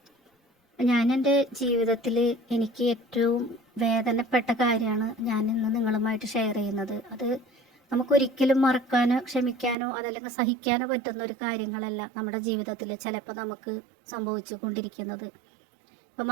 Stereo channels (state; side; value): drops out; left; at 9.8 s